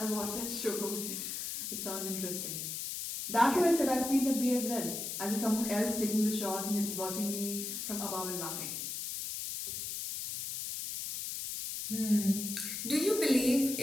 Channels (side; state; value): left; noise; hiss, 4 dB below the sound